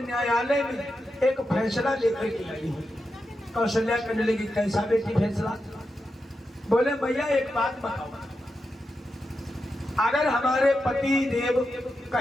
में एक फैसला लेकर के आई हूँ। कौशल्या कहने लगी, कैसा बेटी फैसला? बोले मैया एक बात बताओ, अगर हमारे पति देव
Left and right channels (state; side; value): normal; both; correlation 0.88